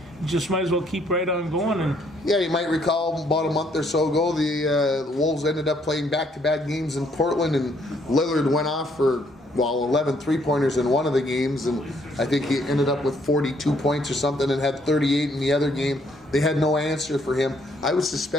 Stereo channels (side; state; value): both; normal; correlation 0.68